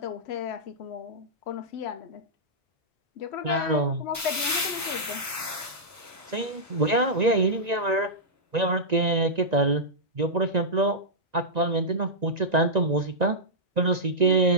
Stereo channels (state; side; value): normal; both; correlation -0.11